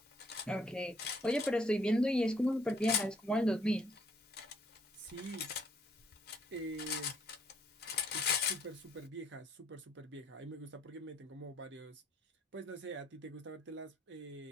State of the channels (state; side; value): normal; both; correlation 0.65